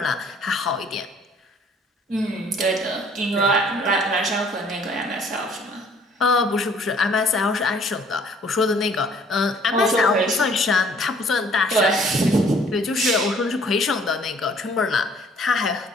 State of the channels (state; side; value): normal; both; correlation 0.58